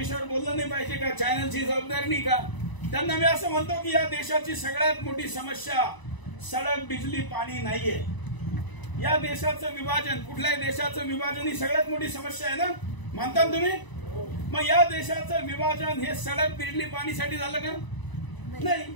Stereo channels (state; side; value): late; right; 1.0 ms